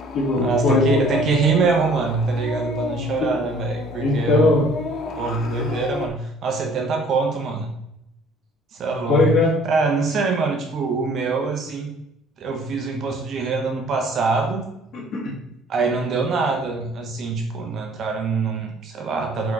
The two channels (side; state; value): both; normal; correlation 0.55